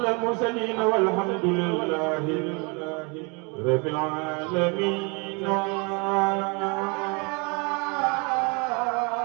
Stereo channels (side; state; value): left; quieter; 31.3 dB